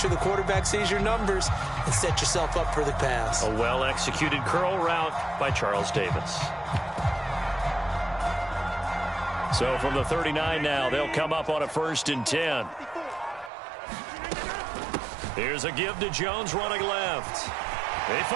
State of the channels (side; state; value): left; drops out; at 13.5 s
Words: the quarterback sees your numbers and set yourself up for the pass. A well-executed curl route by Charles Davis. So from the 39 now, they'll come up on a 1st and 10. Here's a give to Jones running left. They